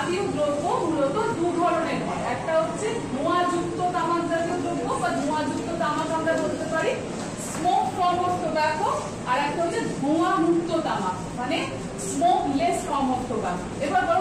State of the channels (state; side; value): identical; both; correlation 1.00